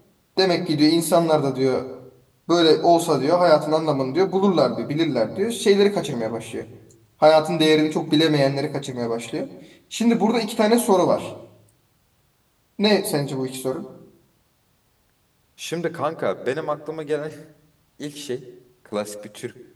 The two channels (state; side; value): identical; both; correlation 1.00